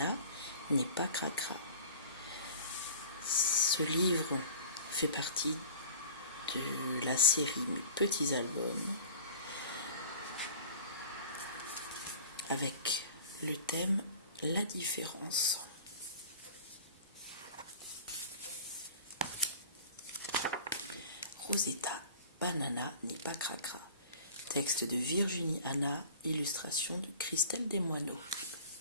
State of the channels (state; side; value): inverted; both; correlation -0.42